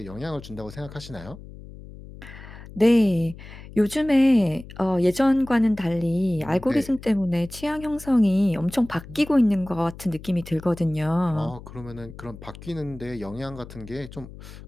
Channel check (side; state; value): left; noise; hum, 16 dB below the sound